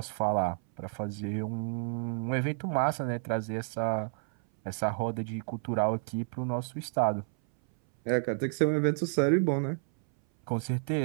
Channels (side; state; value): left; silent; 58 dB below the other